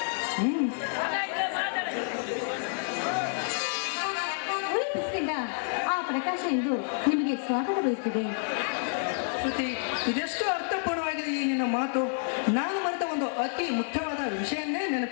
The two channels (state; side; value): silent; right; digital silence